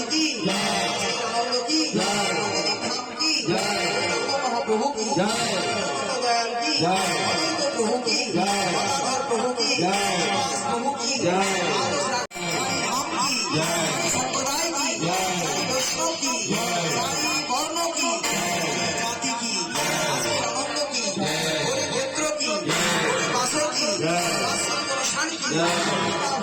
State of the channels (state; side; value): identical; both; correlation 1.00